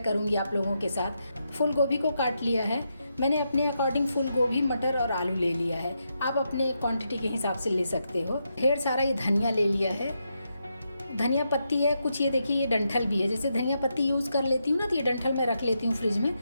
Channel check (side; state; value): both; inverted; correlation -0.83